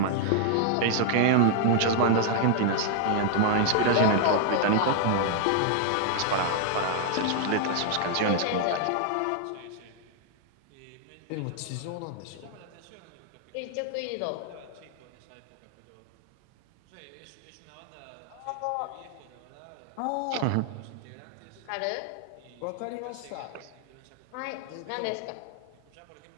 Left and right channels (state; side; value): different; both; correlation 0.00